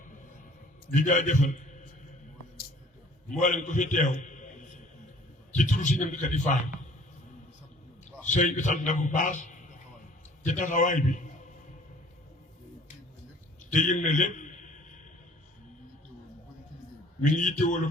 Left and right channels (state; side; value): normal; both; correlation 0.53